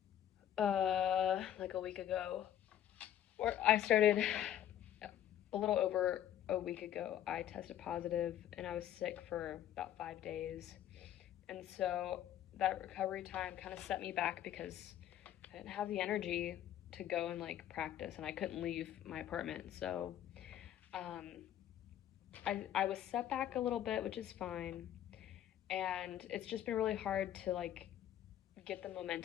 like a week ago. Or I started a little over a week ago. I tested positive, and I was sick for about 5 days. And so that recovery time kind of set me back because I didn't have the energy to go and like practice, and I couldn't leave my apartment. So I was set back a little bit, which is fine. And it's just been really hard to like get the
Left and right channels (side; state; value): right; quieter; 11.2 dB